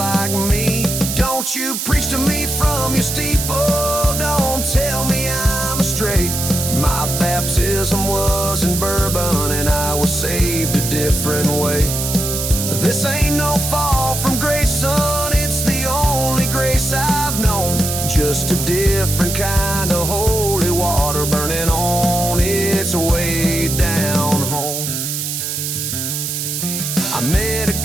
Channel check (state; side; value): noise; right; hiss, 3 dB below the sound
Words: me. Don't you preach to me from your steeple, don't tell me I'm astray. My baptism was in bourbon and I was saved a different way. This ain't no fall from grace, son, it's the only grace I've known. Just a different kind of holy water burning on its way down home. I met a